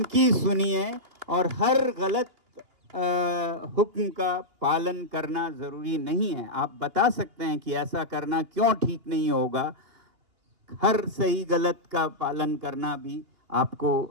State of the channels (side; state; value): left; late; 2.9 ms